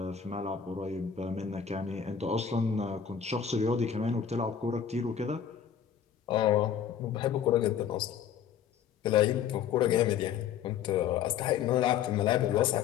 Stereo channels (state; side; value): quieter; right; 8.2 dB